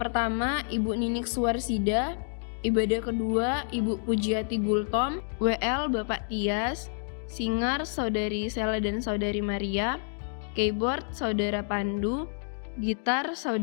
Ibu Ninik Suwarsida, ibadah kedua Ibu Pujiati Gultom, WL Bapak Tias, singer Saudari Sela dan Saudari Maria, keyboard Saudara Pandu, gitar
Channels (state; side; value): silent; right; 59 dB below the other